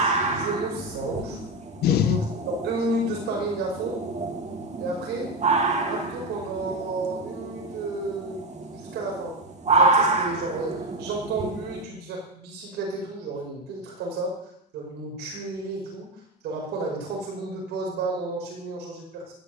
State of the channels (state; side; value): normal; both; correlation 0.14